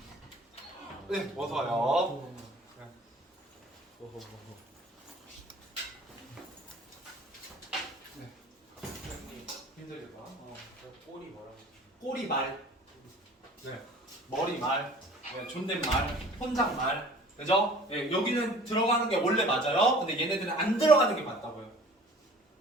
네, 어서 와요. 네. 힘들겠다. 꼬리 뭐라고? 꼬리말, 네. 머리말, 네. 존댓말, 혼잣말, 그죠? 네. 여기는 들어가는 게 원래 맞아요. 근데 얘네들은 안 들어가는 게 맞다고요.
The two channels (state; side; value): normal; both; correlation 0.47